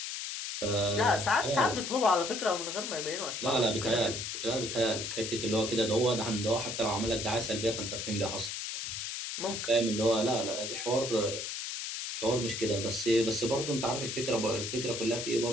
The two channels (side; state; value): left; noise; hiss, 5 dB below the sound